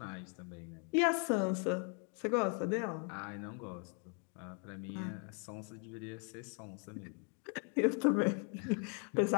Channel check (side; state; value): right; quieter; 39.7 dB